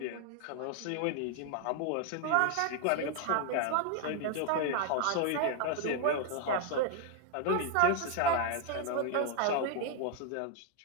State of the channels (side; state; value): both; different; correlation 0.00